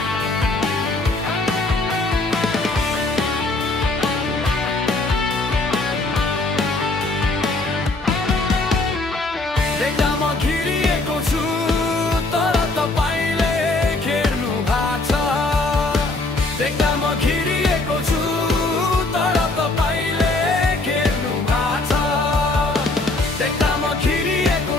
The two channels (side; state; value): right; quieter; 3.0 dB